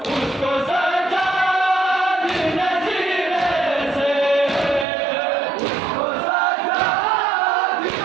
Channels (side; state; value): left; drops out; at 4.9 s